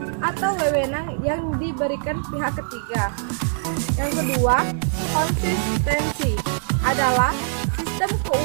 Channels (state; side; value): silent; left; digital silence